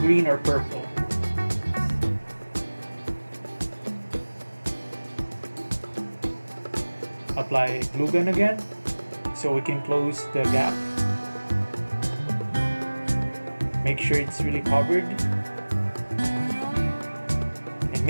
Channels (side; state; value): both; inverted; correlation -1.00